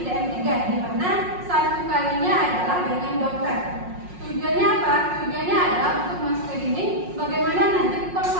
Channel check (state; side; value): late; left; 5.5 ms